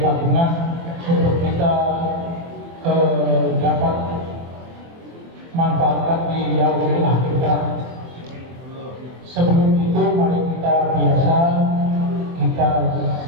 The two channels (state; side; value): late; left; 24 ms